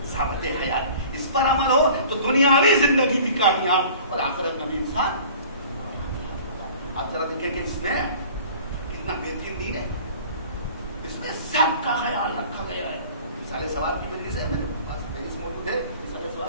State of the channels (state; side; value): inverted; both; correlation -0.46